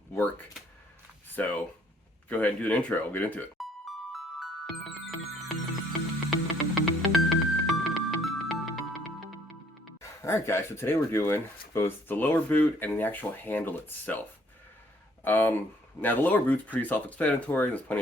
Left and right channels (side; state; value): both; normal; correlation 0.63